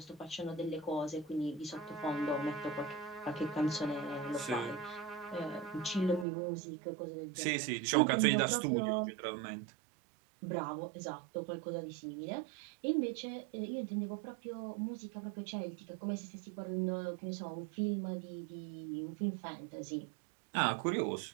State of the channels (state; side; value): drops out; left; at 6.2 s